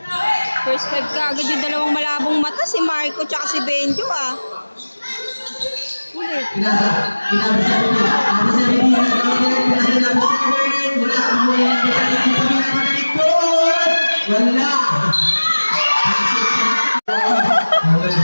First five ka agad yung dalawang malabong mata, si Marco tsaka si Benjo Ulit. Pinasa, number 17. Number 17, pinasa number 7. Wala, number 17. Wala.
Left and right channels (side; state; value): both; inverted; correlation -1.00